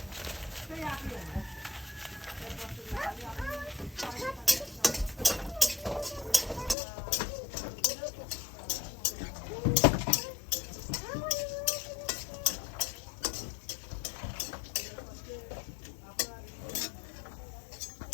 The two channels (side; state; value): right; drops out; at 6.8 s